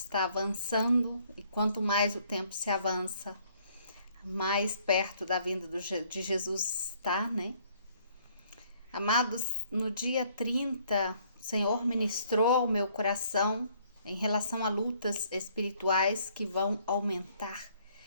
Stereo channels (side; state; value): both; inverted; correlation -0.64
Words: avançando e quanto mais o tempo se avança, mais perto da vinda de Jesus está, né? Amados, no dia 30, o Senhor ministrou ao meu coração em relação a lutas espirituais que vão aumentar